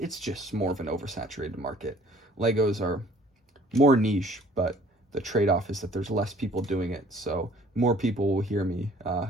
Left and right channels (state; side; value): normal; both; correlation 0.55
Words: just more of an oversaturated market. Legos are more niche, but the trade-off is that there's less people doing it, so more people will hear me